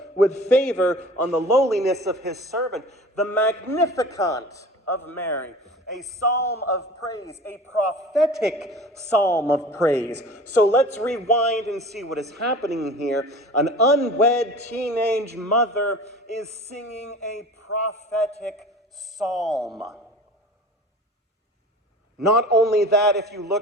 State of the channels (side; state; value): both; normal; correlation 0.40